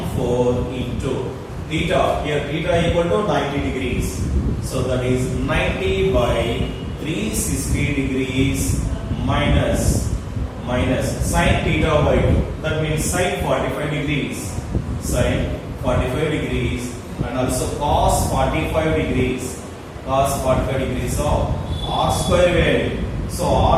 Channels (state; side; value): identical; both; correlation 1.00